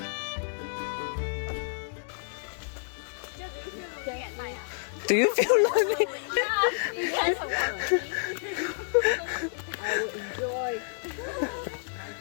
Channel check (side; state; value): right; silent; digital silence